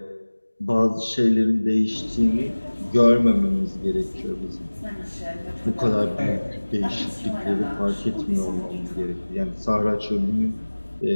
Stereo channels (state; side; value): inverted; both; correlation -1.00